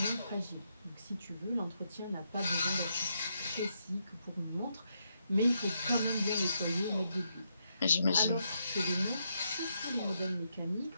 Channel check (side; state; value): both; inverted; correlation -0.80